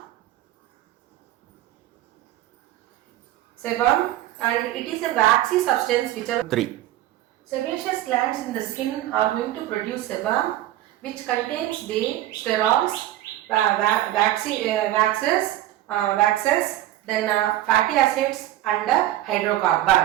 and it is a waxy substance which are 3. Sebaceous glands in the skin are going to produce sebum, which contains the sterols, waxes, then fatty acids and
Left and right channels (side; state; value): left; quieter; 14.3 dB